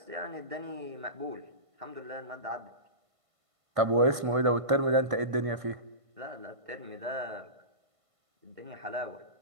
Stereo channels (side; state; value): left; late; 1.5 ms